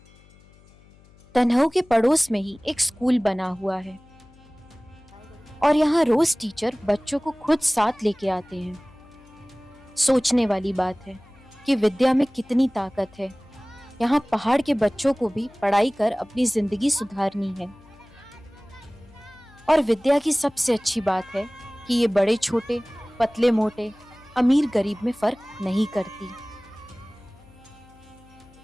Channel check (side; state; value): left; noise; hum, 26 dB below the sound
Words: तन्हाऊ के पड़ोस में ही एक स्कूल बना हुआ है और यहाँ रोज टीचर बच्चों को खुद साथ लेके आते हैं। सोचने वाली बात है कि विद्या में कितनी ताकत है। यहाँ पहाड़ के बच्चों को भी पढ़ाई कर अपनी जिंदगी सुधारनी है। और विद्या की सबसे अच्छी बात है कि ये बड़े छोटे, पतले मोटे, अमीर गरीब में फर्क नहीं करती।